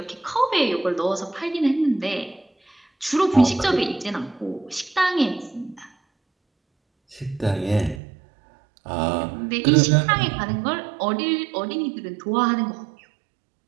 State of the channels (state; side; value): drops out; left; at 8.0 s